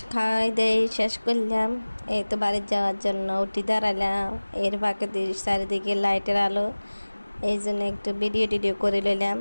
দেয় শেষ করলাম। এই তো বাড়ি যাওয়ার জন্য উঠি দাঁড়ালাম। এর ফাঁকে চারিদিকে লাইটের আলো, এই জন্য একটু ভিডিও টিডিও করে নিলাম।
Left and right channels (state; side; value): inverted; both; correlation -1.00